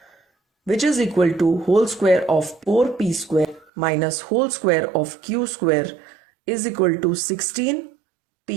which is equal to whole square of 4p square minus whole square of q square is equal to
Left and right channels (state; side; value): drops out; left; at 3.7 s